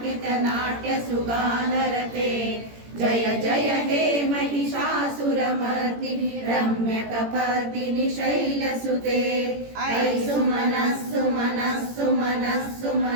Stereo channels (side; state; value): left; late; 17 ms